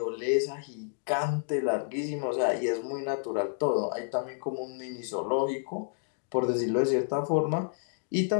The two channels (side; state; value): right; silent; digital silence